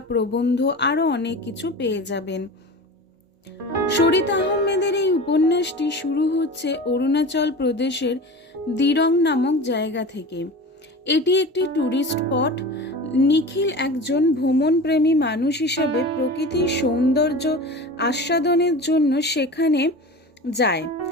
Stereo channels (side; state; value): both; normal; correlation 0.33